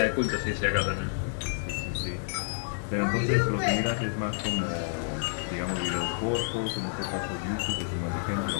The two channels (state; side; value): silent; right; digital silence